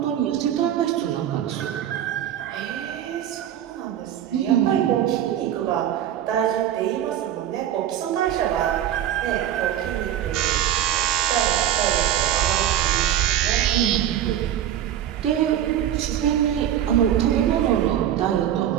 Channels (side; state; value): left; quieter; 11.0 dB